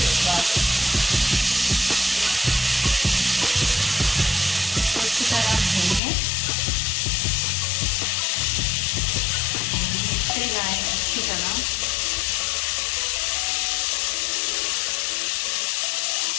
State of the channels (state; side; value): drops out; right; at 6.0 s